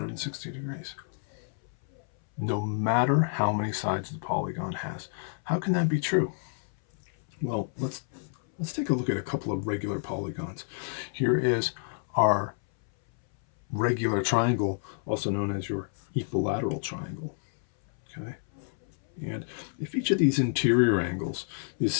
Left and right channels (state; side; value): silent; right; 58 dB below the other